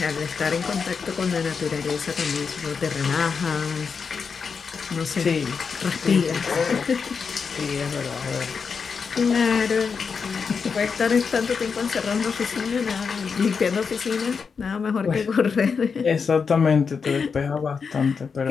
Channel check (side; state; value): right; quieter; 5.6 dB